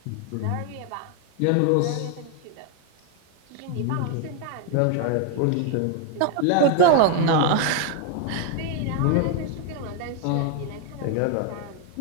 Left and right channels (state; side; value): different; both; correlation 0.00